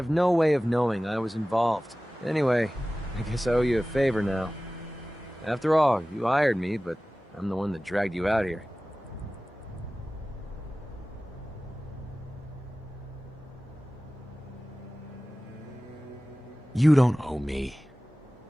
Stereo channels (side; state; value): both; normal; correlation 0.97